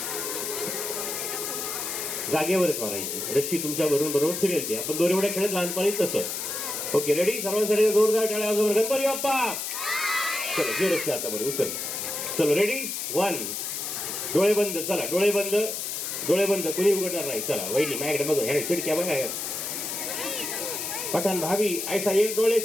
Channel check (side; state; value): left; noise; hiss, 4 dB below the sound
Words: जागेवरच मारायची. रश्शी तुमच्या बरोबर फिरेल ती. आपण दोरी उड्या खेळत लहानपणी तसं. Okay ready? सर्वांसाठी जोरदार टाळ्या वाजवा. गणपती बाप्पा. चलो जे रस्ते आता बरं उचल. चलो रेडी 1. डोळे बंद. चला डोळे बंद, डोळे बंद. कोणी उघडणार नाही. चला वहिनी माझ्याकडे बघा, ह्या चिडक्या बघा. पठाण भाभी ऐसा एक डोळे